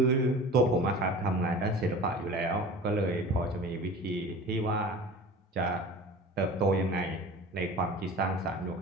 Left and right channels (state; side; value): normal; both; correlation 0.38